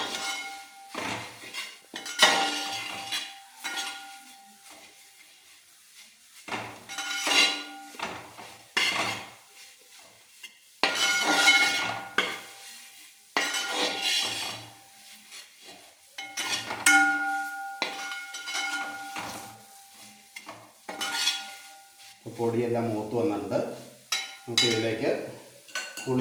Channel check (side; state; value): both; identical; correlation 1.00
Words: പൊടിയെല്ലാം മൂത്ത് വന്നിട്ടുണ്ട്. നമുക്ക് ഇതിലേക്ക്